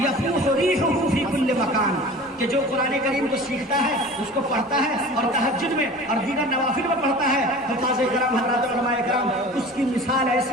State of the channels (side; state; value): both; normal; correlation 0.39